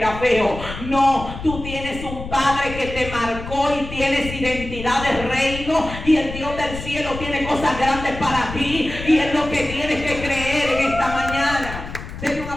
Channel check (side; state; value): left; noise; rumble, 10 dB below the sound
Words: feo. No, tú tienes un Padre que te marcó y tienes identidad de reino. Y el Dios del cielo tiene cosas grandes para ti. Y es lo que tienes que creer en esta mañana. Denle un